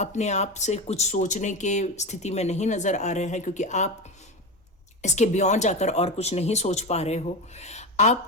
आप से कुछ सोचने के स्थिति में नहीं नज़र आ रहे हैं, क्योंकि आप इसके बियॉन्ड जाकर और कुछ नहीं सोच पा रहे हो।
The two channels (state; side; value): normal; both; correlation 0.21